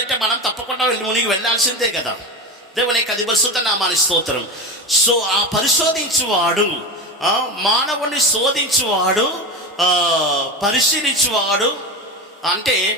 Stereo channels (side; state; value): both; normal; correlation 0.22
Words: మనం తప్పకుండా మునిగి వెళ్ళాల్సిందే కదా. దేవునికి అది పరిశుద్ధ నామానికి స్తోత్రం. సో ఆ పరిశోధించువాడు, మానవుని శోధించువాడు, పరిశీలించువాడు, అంటే